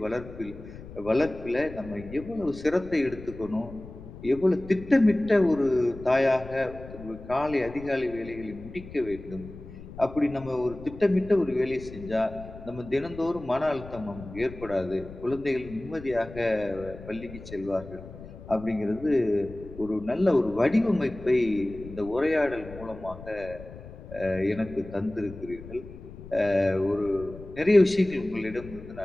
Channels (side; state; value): left; noise; rumble, 15 dB below the sound